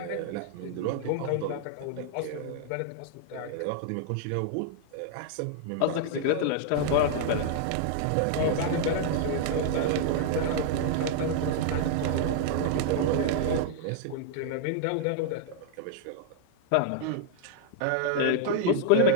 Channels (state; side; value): different; both; correlation -0.01